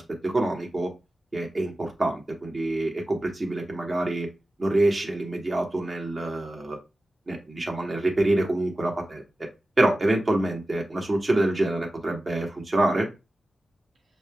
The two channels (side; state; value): both; normal; correlation 0.95